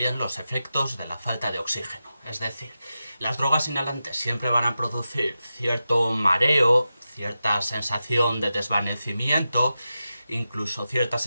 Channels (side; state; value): both; inverted; correlation -0.91